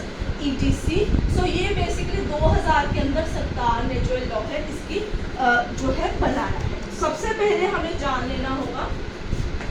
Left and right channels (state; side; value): identical; both; correlation 1.00